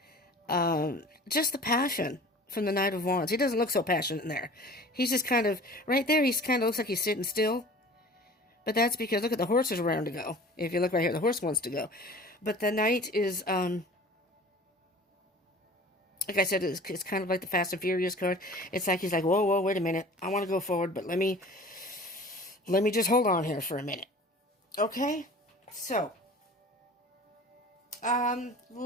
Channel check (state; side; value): normal; both; correlation 0.43